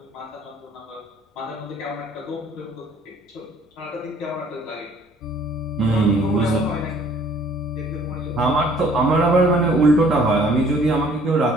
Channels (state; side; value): normal; both; correlation 0.57